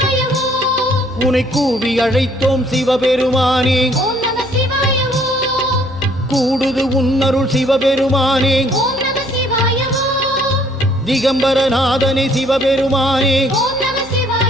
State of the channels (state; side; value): normal; both; correlation 0.61